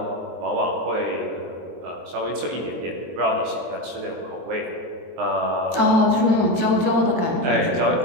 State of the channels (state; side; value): late; left; 23 ms